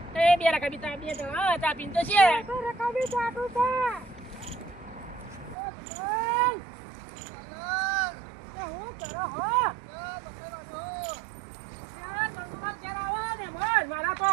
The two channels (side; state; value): left; drops out; at 5.6 s